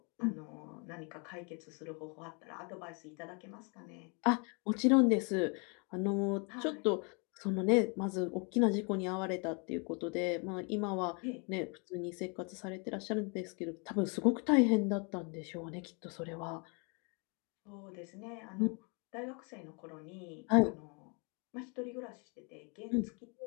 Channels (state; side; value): quieter; right; 34.4 dB